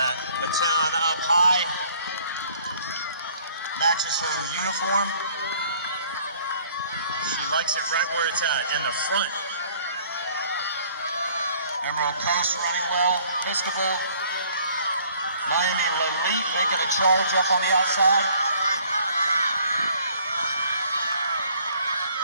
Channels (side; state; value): both; inverted; correlation -0.58